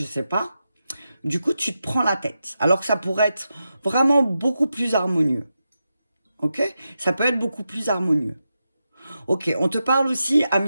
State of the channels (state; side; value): inverted; both; correlation -0.89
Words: sais pas. Du coup, tu te prends la tête. Alors que ça pourrait être vraiment beaucoup plus harmonieux. Ok? Ça peut être beaucoup plus harmonieux. Ok, on te parle aussi, ami